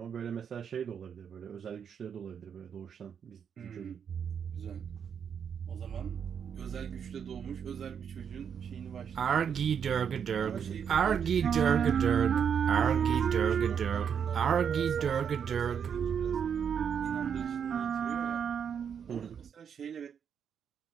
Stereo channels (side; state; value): left; quieter; 7.6 dB